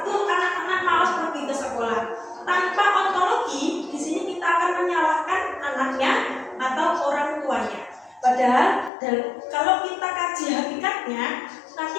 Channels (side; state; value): right; drops out; at 8.9 s